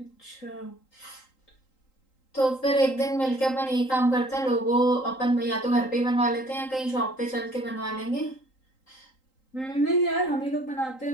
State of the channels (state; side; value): late; right; 3.8 ms